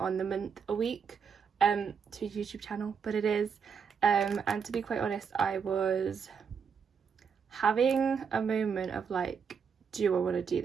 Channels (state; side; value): quieter; left; 6.5 dB